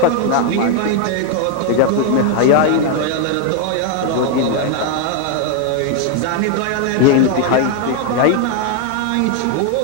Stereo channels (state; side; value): different; both; correlation 0.00